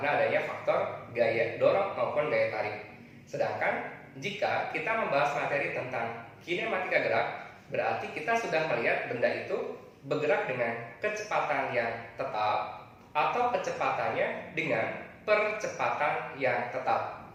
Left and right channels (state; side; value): identical; both; correlation 1.00